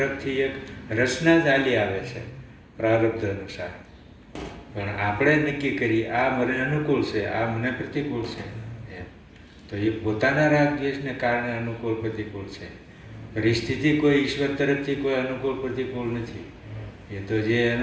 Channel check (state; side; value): identical; both; correlation 1.00